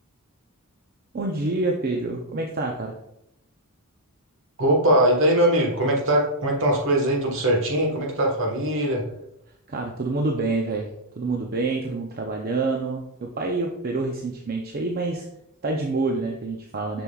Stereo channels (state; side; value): normal; both; correlation -0.04